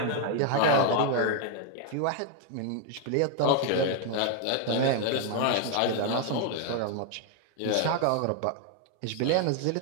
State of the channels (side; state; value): both; different; correlation 0.00